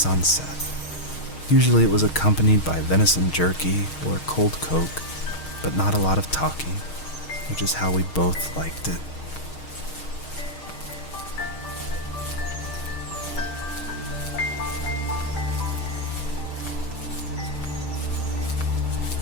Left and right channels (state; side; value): late; right; 6.4 ms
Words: set. Usually it was accompanied by venison jerky or cold Coke, but not a lot of talking, which is how we both liked it.